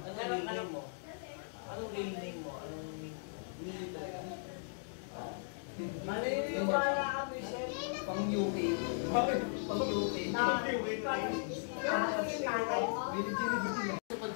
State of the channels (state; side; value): silent; right; digital silence